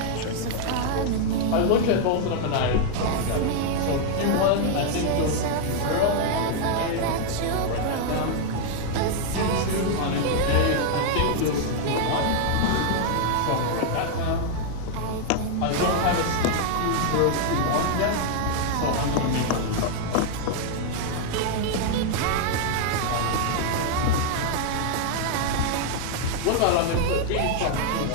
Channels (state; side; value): different; both; correlation 0.00